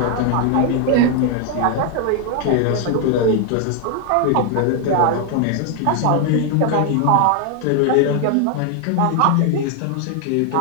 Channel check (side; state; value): both; different; correlation 0.00